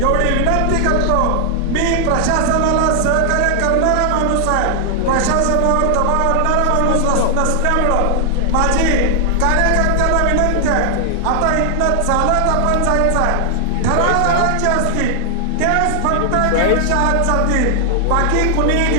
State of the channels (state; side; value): different; both; correlation 0.00